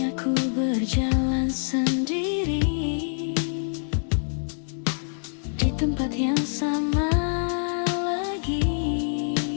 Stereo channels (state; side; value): silent; right; digital silence